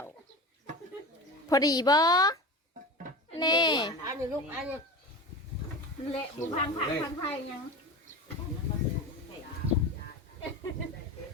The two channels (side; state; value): both; normal; correlation 0.30